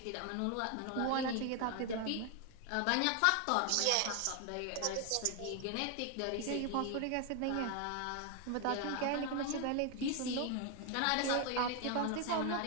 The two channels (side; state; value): both; different; correlation 0.01